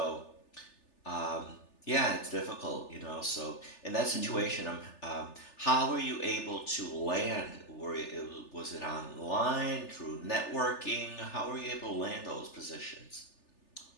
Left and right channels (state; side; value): late; right; 3.4 ms